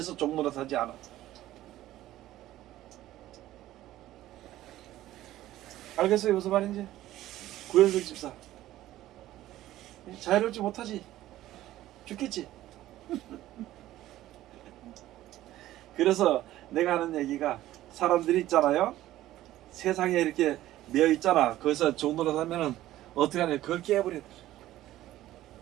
종노릇하지 않아. 알겠어요? 무슨 말인지? 구현석 집사 자유롭지 못하지? 죽겠지? 그래서 내가 하는 얘기가 사람들이 있잖아요 세상에 이렇게 매여 있잖아 거기서 종노릇 하면은 어떻게 하냐 그걸 깨버려.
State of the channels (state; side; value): quieter; left; 14.5 dB